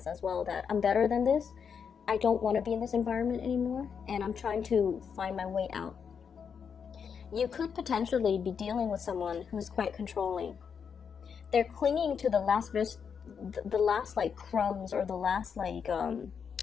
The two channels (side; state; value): right; quieter; 6.7 dB